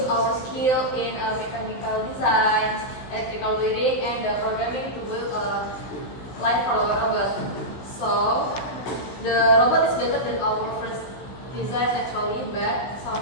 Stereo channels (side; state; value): right; late; 16 ms